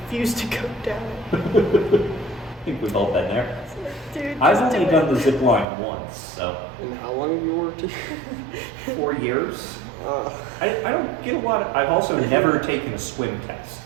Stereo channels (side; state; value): left; drops out; at 5.7 s